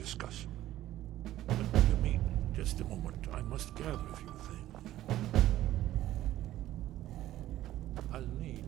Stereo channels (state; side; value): quieter; left; 14.0 dB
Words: Let me, just a moment. I must gather a few things. I'll need...